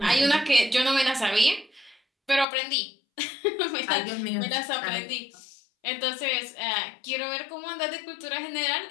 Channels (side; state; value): right; drops out; at 2.5 s